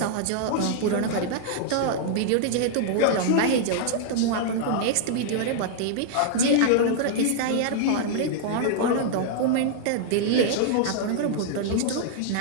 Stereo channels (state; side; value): different; both; correlation -0.01